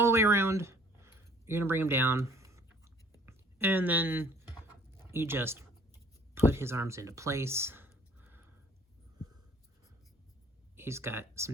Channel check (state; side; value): normal; both; correlation 0.55